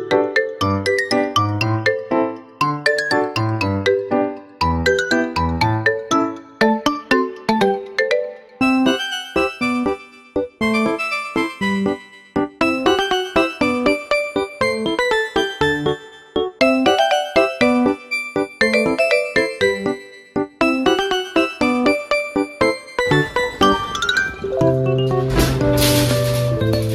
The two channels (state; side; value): identical; both; correlation 1.00